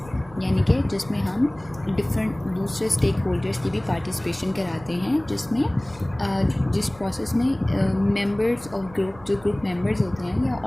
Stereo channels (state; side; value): noise; right; rumble, 21 dB below the sound